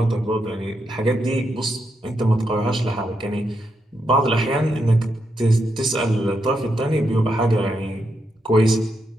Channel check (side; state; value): both; normal; correlation 0.82